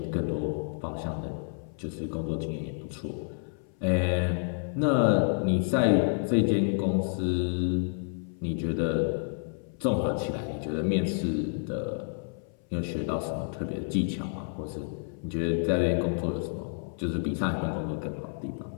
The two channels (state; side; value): silent; right; 58 dB below the other